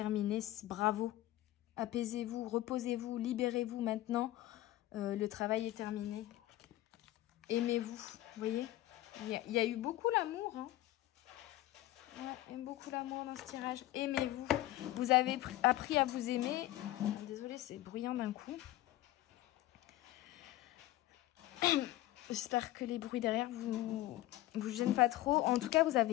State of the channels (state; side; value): quieter; right; 15.6 dB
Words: bravo. Apaisez-vous, reposez-vous, libérez-vous maintenant. Le travail est terminé. Aimez-vous, vous voyez. Il y a eu beaucoup l'amour. Hein. Ouais, beaucoup l'amour dans ce tirage. Aimez-vous. Vous avez appris à vous aimer. Désolée, c'est bruyant d'un coup. J'espère que les bruits derrière vous gênent pas trop. En tout cas, vous